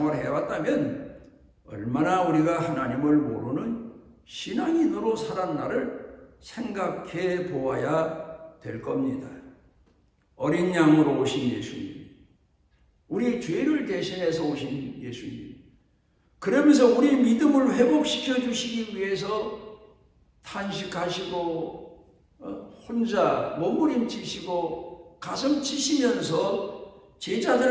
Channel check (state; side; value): identical; both; correlation 1.00